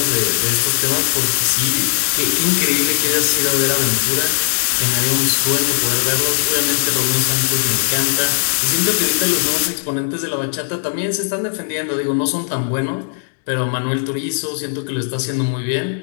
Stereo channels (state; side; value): silent; right; digital silence